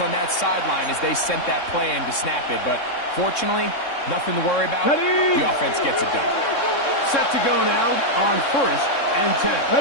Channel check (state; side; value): late; right; 3.6 ms